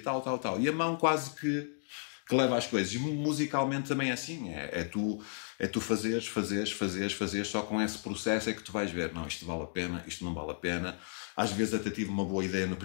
E a mão quase que leva às coisas. E musicalmente também é assim, é tu fazeres, só com esse processo é que tu vais ver, não, isto vale a pena, isto não vale a pena. Às vezes até tive uma boa ideia no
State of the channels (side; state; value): right; silent; digital silence